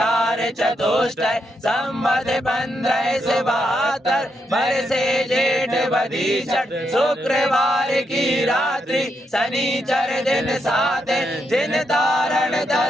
चतुष्टय संवत 15 से 72 बरसे जेठ बधीचट शुक्रवार की रात्रि शनिचर दिन 7 जिन तारण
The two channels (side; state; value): both; normal; correlation 0.81